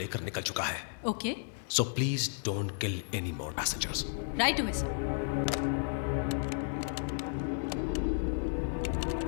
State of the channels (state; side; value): silent; right; digital silence